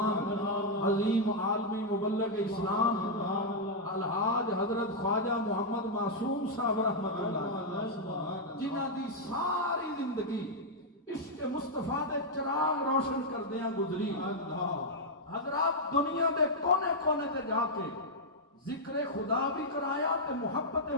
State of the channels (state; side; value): normal; both; correlation -0.04